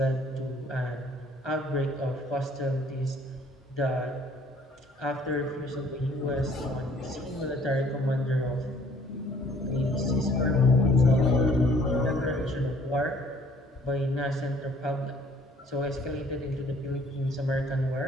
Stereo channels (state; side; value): normal; both; correlation 0.58